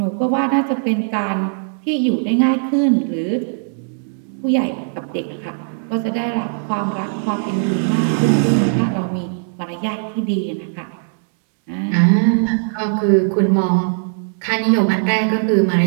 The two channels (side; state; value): left; silent; digital silence